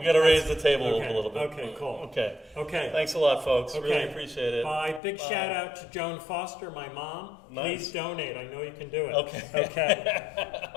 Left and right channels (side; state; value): right; drops out; at 5.0 s